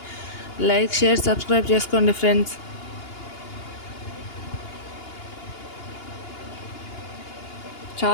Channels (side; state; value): right; late; 2.8 ms